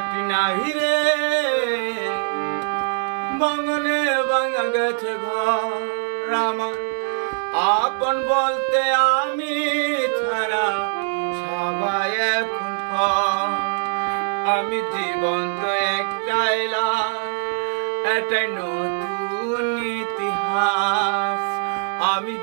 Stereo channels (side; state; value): left; silent; digital silence